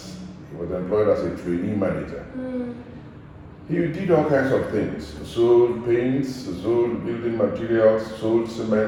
he was employed as a trainee manager. He did all kinds of things. Sold paints, sold building materials, sold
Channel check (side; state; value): both; identical; correlation 1.00